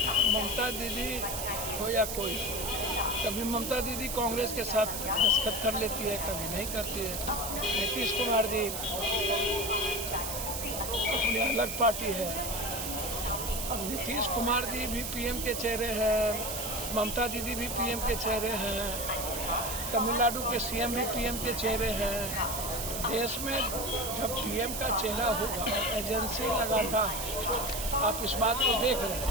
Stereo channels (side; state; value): right; noise; hiss, 4 dB below the sound